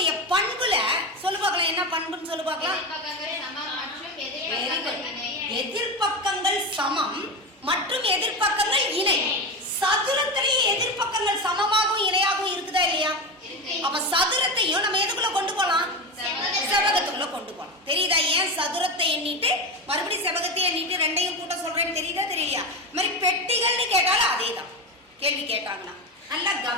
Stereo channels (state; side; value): normal; both; correlation 0.19